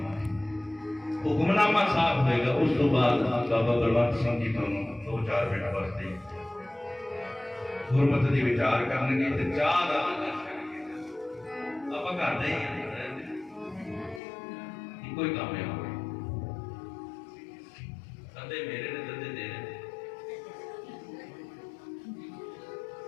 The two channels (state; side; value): drops out; right; at 14.2 s